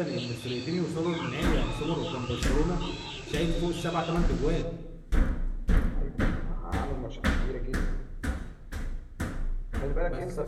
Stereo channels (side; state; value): both; identical; correlation 1.00